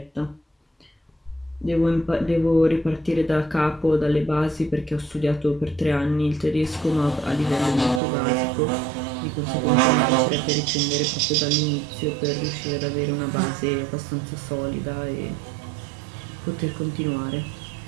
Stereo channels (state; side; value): drops out; left; at 8.0 s